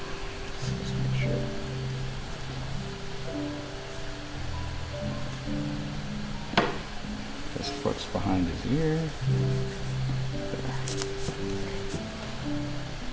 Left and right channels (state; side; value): identical; both; correlation 1.00